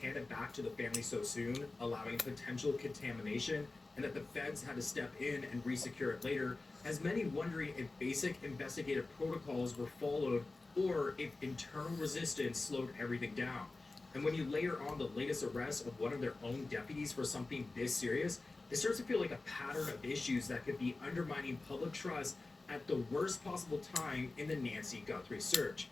back to the family so soon, allowing potential contamination, and that the feds had to step in and resecure it later, has many wondering if basic investigative protocols were followed or if internal resistance slowed everything down. And when you layer on the latest arrest of one of their own deputies for something this serious, it starts to feel like a pattern of issues that could be undermining public trust at the worst possible time in the Nancy Guthrie search,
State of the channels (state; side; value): quieter; right; 3.4 dB